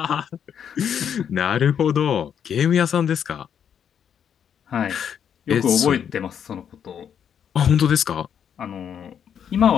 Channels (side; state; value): right; quieter; 8.3 dB